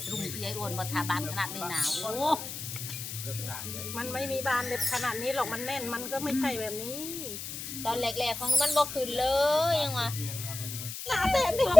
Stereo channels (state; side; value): noise; left; hiss, 8 dB below the sound